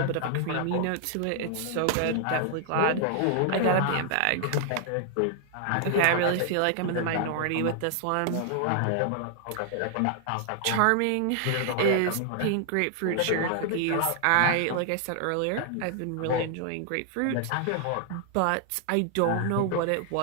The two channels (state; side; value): different; both; correlation 0.00